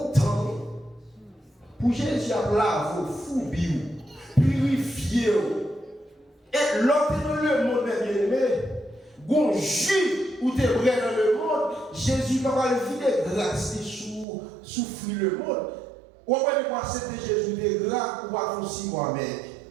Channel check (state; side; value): drops out; left; at 14.2 s